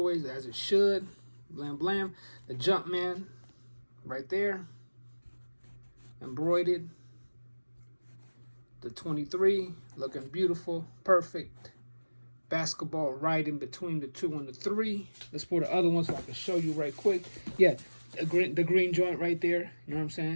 as it should. Blam. The Jumpman right there, embroidered. The 23 looking beautiful, perfect. Basketball right in between the 2 and the 3. Let's pull the other one so I can show you right quick. Yeah, the green joint right there. You know what I'm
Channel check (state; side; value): inverted; both; correlation -1.00